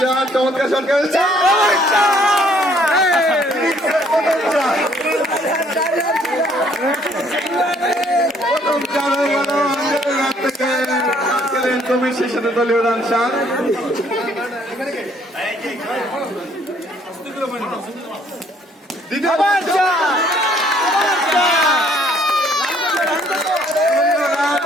চমৎকার শট খেলছে। তুমি সেই সাথে দলীয় রান 7।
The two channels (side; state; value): both; normal; correlation 0.63